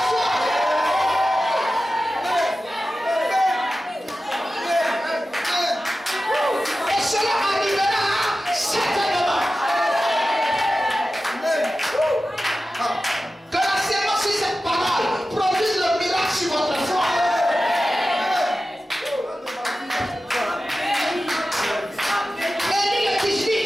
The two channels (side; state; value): both; normal; correlation 0.94